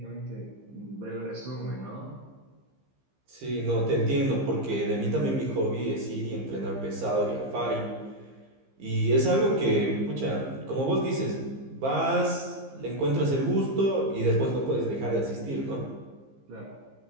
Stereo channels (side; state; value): left; late; 15 ms